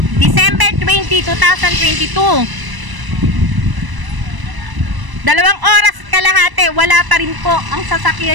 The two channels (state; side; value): late; left; 1.0 ms